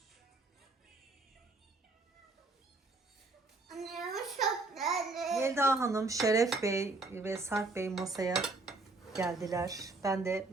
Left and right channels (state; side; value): quieter; left; 3.4 dB